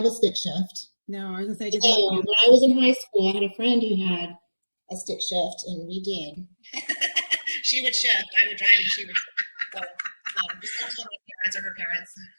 a stick shift. No, I was going to say, when I was in high school, I had a friend who had a stick shift, and we did. She would shift, I would drive, and she would shift. Just don't tell my parents or her parents.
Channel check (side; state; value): both; inverted; correlation -1.00